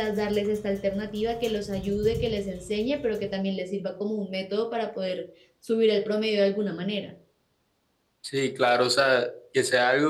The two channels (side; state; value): both; identical; correlation 1.00